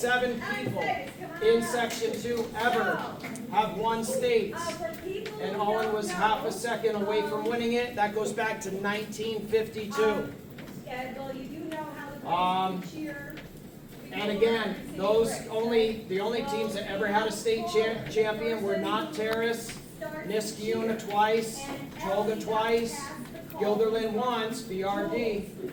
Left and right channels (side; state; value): both; identical; correlation 1.00